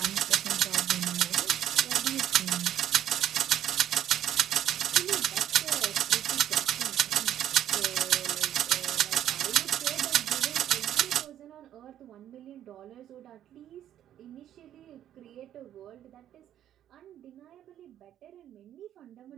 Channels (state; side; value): quieter; left; 11.2 dB